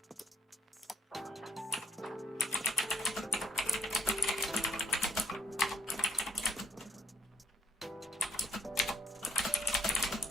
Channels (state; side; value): normal; both; correlation 0.73